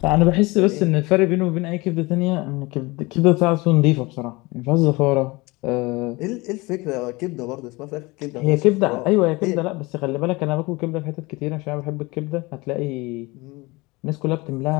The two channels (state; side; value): quieter; right; 23.5 dB